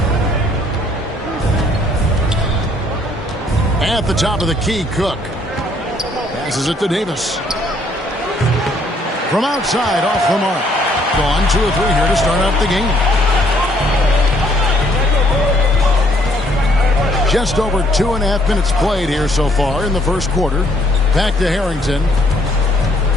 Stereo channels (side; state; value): both; normal; correlation 0.65